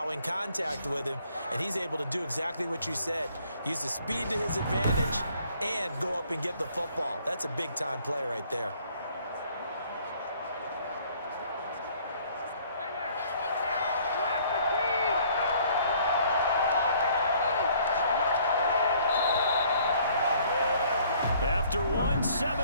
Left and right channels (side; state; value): both; inverted; correlation -0.60